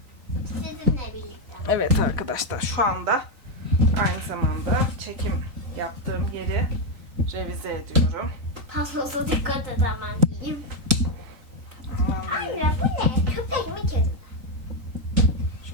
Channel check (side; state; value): left; late; 3.9 ms